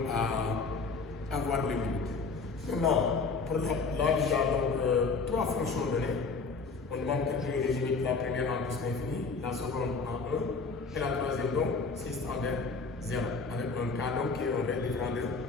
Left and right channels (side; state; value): right; quieter; 4.4 dB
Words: à avoir les limites. Maintenant, pour là, il y a 3 fonctions données. On demande de créer les limites, la première en plus l'infini, la seconde en 1, et la troisième c'est tend vers 0, avec un cas qui est un vrai différent